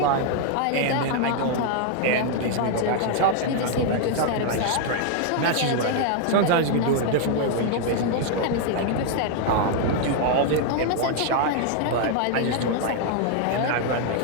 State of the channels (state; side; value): different; both; correlation 0.00